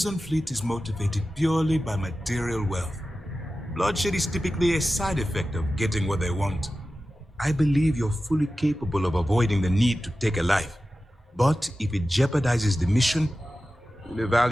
Fleet is motivated purely by material wealth. Bloodshed is typically a side effect of getting what they want. I believe you're fully capable of avoiding the need to take a life. But if it jeopardizes the mission, we'll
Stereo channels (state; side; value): normal; both; correlation 0.94